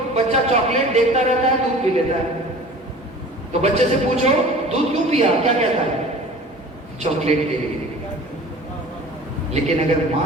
بچہ چاکلیٹ دیکھتا رہتا ہے، دودھ پی لیتا ہے. تو بچے سے پوچھو دودھ کیوں پیا، کیا کہتا ہے؟ چاکلیٹ کے لیے. لیکن اگر ماں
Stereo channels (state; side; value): normal; both; correlation 0.43